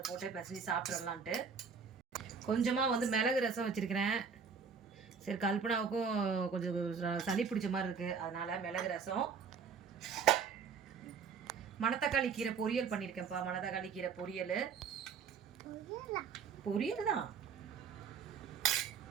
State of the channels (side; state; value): left; quieter; 6.0 dB